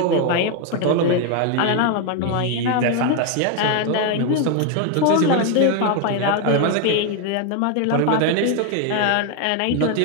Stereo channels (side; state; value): both; different; correlation 0.01